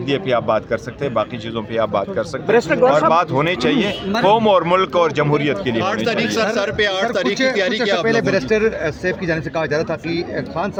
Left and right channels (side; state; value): both; identical; correlation 1.00